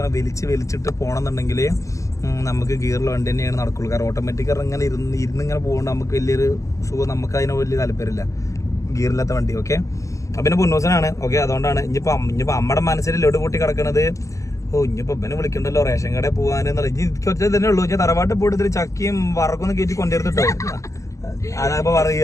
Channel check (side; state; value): right; late; 0.16 ms